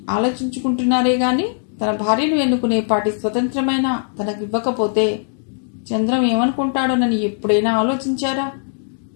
ఆలోచించుకుంటున్నారే గాని తన భార్యను ఎన్నుకునే పాటి స్వతంత్రమైన తనకివ్వకపోతే చంద్రం ఏమనుకుంటాడోనని ఎప్పుడైనా ఆలోచించారా?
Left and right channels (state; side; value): silent; right; digital silence